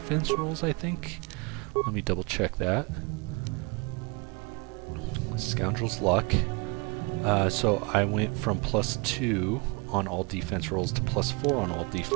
rolls, I think. Let me double check that. Scoundrel's Luck. So I went from +2 on all defense rolls to +4 on all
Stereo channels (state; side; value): quieter; left; 29.3 dB